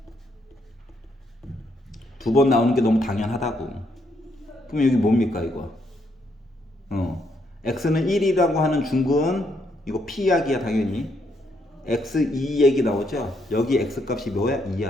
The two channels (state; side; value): normal; both; correlation 0.75